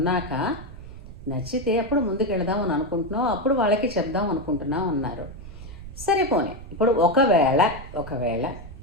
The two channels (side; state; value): right; noise; rumble, 14 dB below the sound